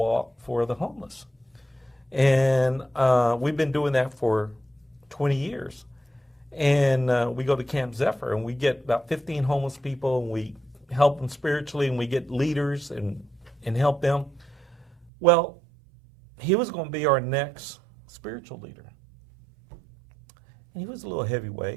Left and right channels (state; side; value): drops out; left; at 15.1 s